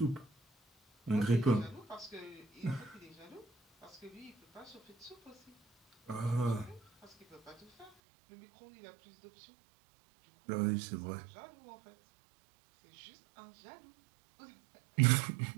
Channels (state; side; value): drops out; left; at 7.9 s